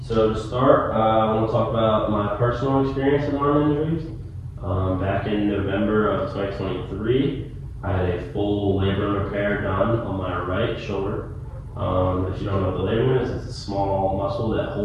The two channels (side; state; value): both; identical; correlation 1.00